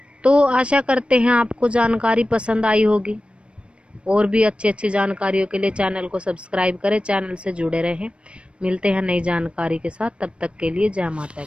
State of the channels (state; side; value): late; left; 0.058 ms